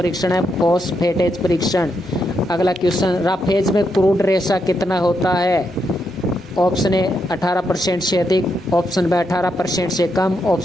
है फॉस्फेटेज परीक्षण। अगला क्वेश्चन, राफेज में क्रूड रेशा कितना होता है? ऑप्शन ए 18% से अधिक, ऑप्शन बी 18% से कम,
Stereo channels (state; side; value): normal; both; correlation 0.81